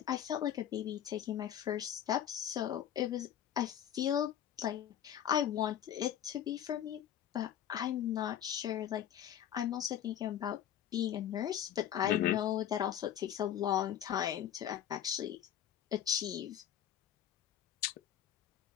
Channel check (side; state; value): right; quieter; 10.4 dB